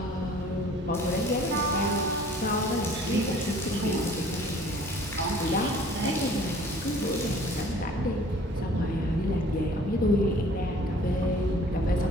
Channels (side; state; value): both; normal; correlation 0.51